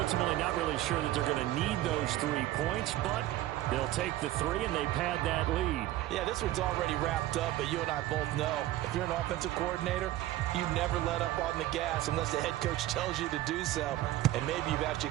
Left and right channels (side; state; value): left; quieter; 15.2 dB